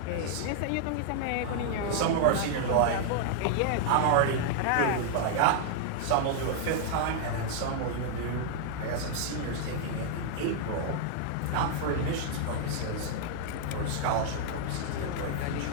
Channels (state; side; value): different; both; correlation -0.01